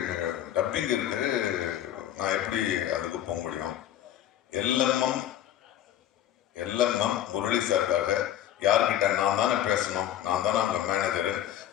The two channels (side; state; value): right; quieter; 11.7 dB